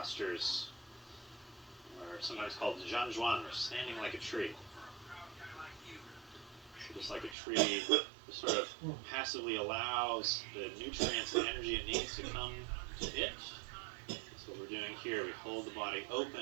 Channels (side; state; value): left; drops out; at 7.4 s